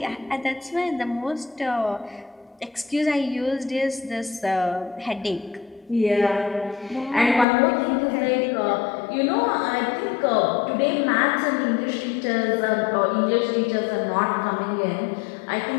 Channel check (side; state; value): right; drops out; at 7.5 s